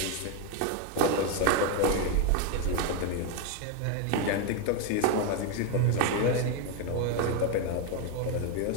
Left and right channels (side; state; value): both; different; correlation 0.02